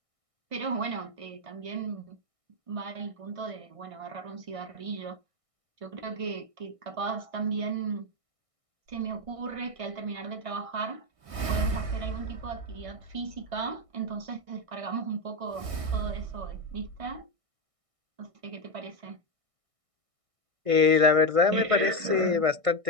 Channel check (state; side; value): late; left; 1.6 ms